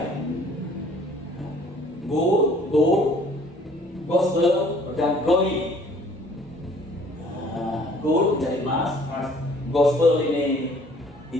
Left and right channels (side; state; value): both; normal; correlation 0.56